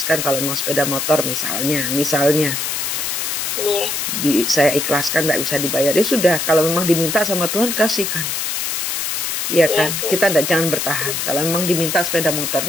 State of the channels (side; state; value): left; noise; hiss, 1 dB below the sound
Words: Kalau mau sepeda motor misalnya saya ikhlaskan, nggak bisa dibayar ya sudah. Kalau memang diminta sama Tuhan kasihkan, ya kan. Kita jangan bertahan. Kalau memang diminta sepeda